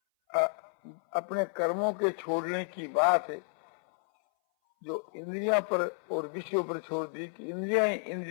अपने कर्मों के छोड़ने की बात है, जो इंद्रियां पर और विषयों पर छोड़ दी कि इंद्रियां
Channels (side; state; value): right; silent; 57 dB below the other